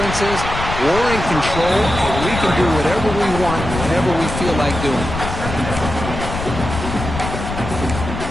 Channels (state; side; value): noise; left; rumble, 6 dB below the sound